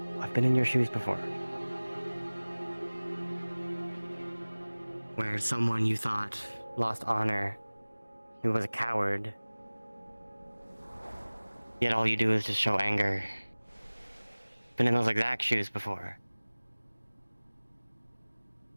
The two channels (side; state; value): both; inverted; correlation -1.00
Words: I've been in your shoes before. Where someone you thought lost honor, who was a coward, yet all you do is just show anger. Been in those exact shoes before.